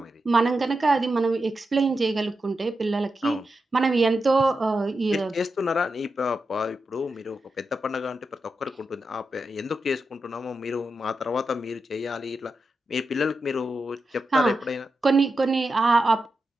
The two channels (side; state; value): both; normal; correlation 0.88